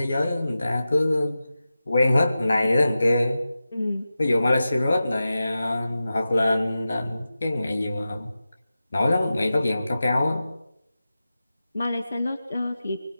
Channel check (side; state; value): both; inverted; correlation -0.93